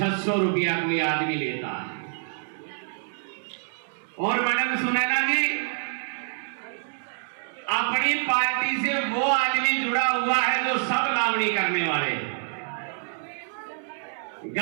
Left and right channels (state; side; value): silent; left; digital silence